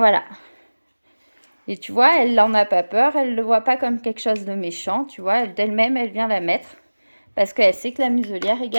Et tu vois, elle n'en a pas peur, elle ne le voit pas comme quelque chose de méchant, tu vois. D'elle-même, elle vient la mettre parce qu'elle sait que la muselière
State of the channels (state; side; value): inverted; both; correlation -1.00